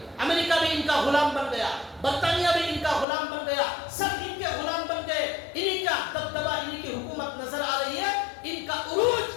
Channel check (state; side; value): drops out; right; at 3.1 s